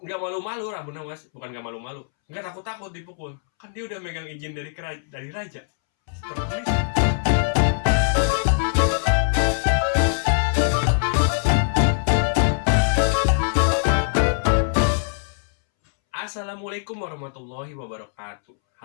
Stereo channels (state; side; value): silent; right; 64 dB below the other